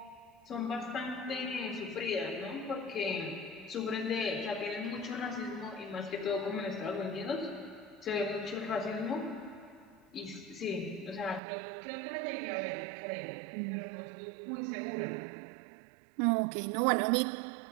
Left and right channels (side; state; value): left; drops out; at 11.4 s